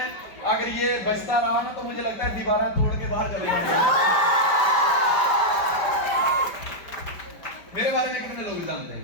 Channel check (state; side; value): late; right; 5.4 ms